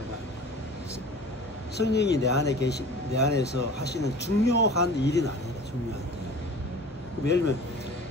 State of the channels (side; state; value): both; normal; correlation 0.41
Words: 성령이 내 안에서 하시는 중요한 일은 아니다. 중요한 일. 예를 들면